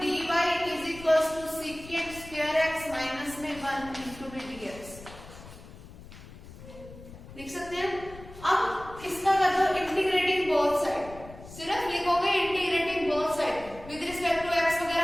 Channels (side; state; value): left; noise; rumble, 17 dB below the sound